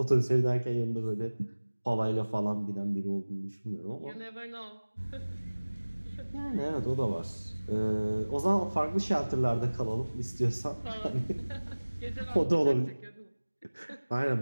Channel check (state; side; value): inverted; both; correlation -1.00